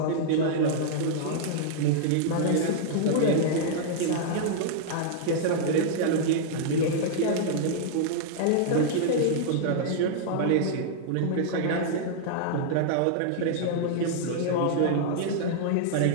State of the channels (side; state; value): both; different; correlation -0.01